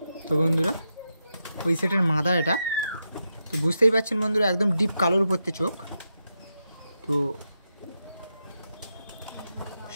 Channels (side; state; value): both; inverted; correlation -0.87